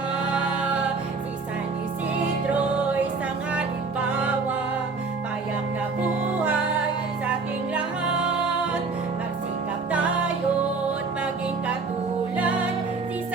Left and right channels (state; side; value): quieter; left; 4.3 dB